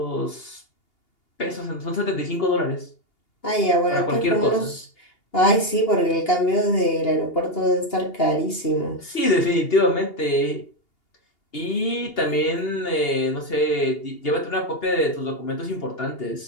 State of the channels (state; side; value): late; right; 2.8 ms